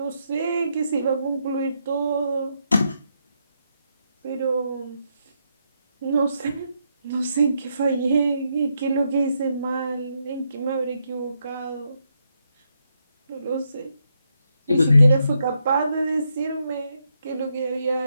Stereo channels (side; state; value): both; inverted; correlation -0.80